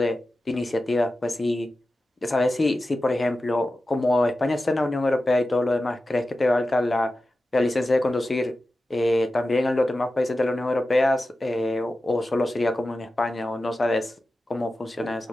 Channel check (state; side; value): normal; both; correlation 0.93